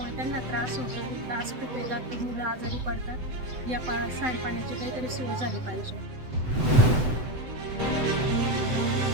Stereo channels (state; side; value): late; left; 7.9 ms